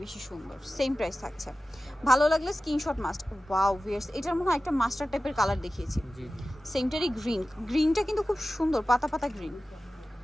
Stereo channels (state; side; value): normal; both; correlation 0.95